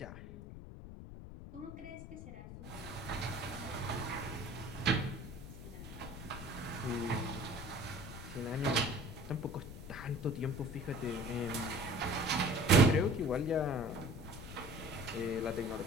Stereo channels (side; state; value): left; noise; rumble, 11 dB below the sound